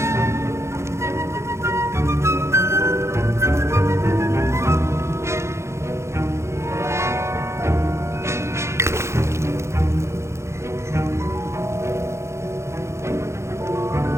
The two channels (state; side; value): late; left; 0.13 ms